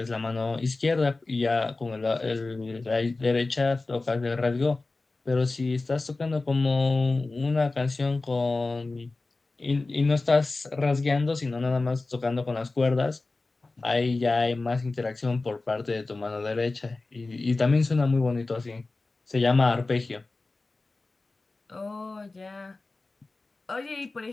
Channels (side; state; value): right; quieter; 3.4 dB